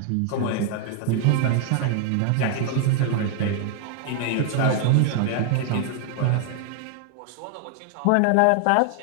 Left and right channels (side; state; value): both; different; correlation 0.00